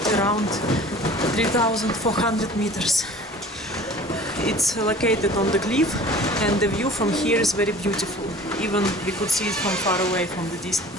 around 3,400 meters. It's located on the cliff, and the view from here is very beautiful. Even we could see it from far away, from the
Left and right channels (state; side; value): normal; both; correlation 0.45